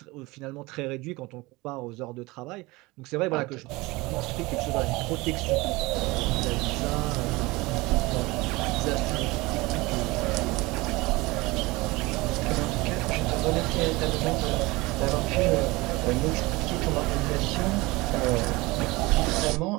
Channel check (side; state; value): left; quieter; 22.3 dB